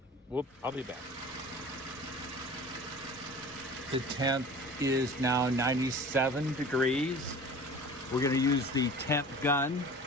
I'll be back. The temp is now 97 degrees. We're going to use the temp gun,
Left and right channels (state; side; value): normal; both; correlation 0.41